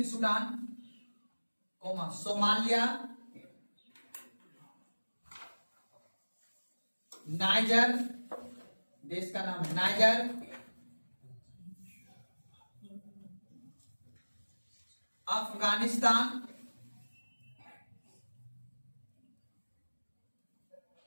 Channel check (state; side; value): inverted; both; correlation -1.00